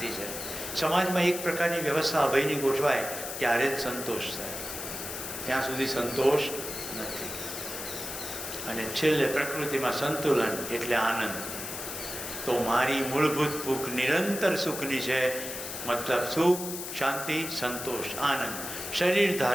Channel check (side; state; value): left; noise; hiss, 7 dB below the sound